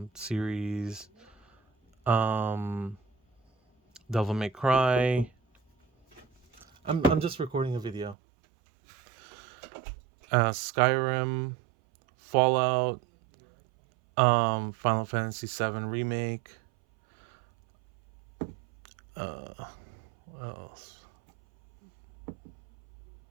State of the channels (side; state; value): left; drops out; at 8.2 s